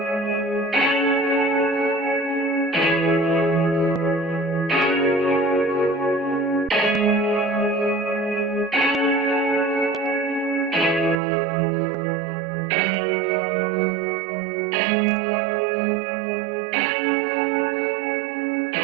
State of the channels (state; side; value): drops out; left; at 11.2 s